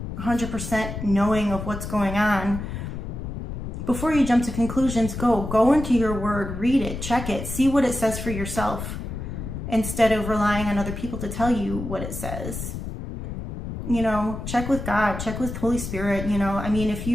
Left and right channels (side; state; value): left; noise; rumble, 7 dB below the sound